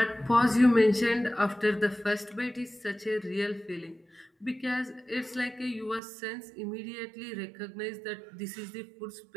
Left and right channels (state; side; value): drops out; left; at 6.0 s